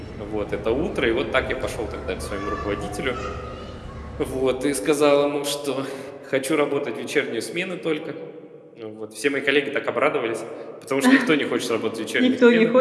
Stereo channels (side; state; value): both; identical; correlation 1.00